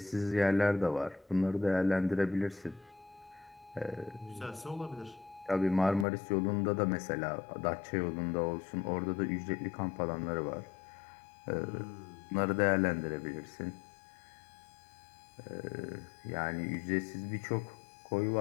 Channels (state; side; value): drops out; right; at 6.1 s